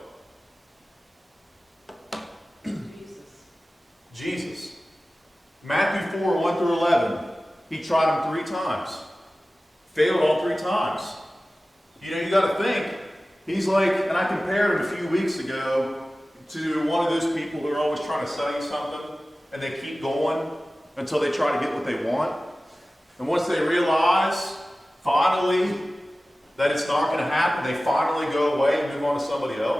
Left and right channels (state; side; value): normal; both; correlation 0.96